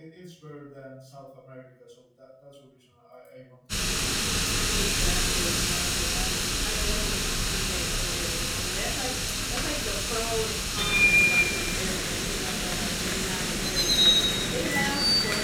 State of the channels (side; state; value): both; identical; correlation 1.00